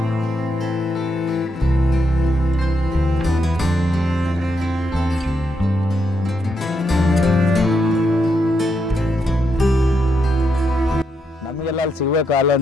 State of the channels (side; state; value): both; normal; correlation 0.81